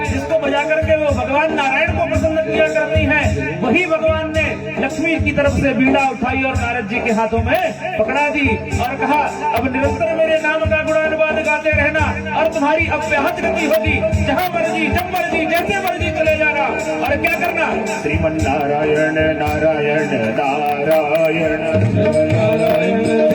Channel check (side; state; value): both; identical; correlation 1.00